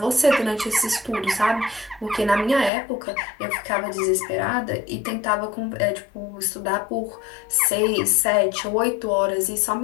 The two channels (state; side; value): drops out; right; at 2.7 s